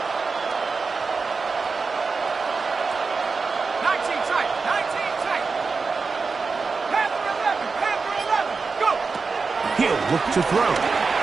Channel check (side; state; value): left; quieter; 4.6 dB